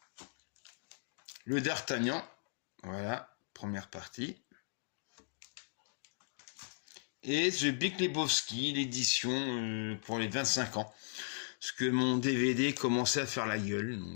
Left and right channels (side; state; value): right; silent; digital silence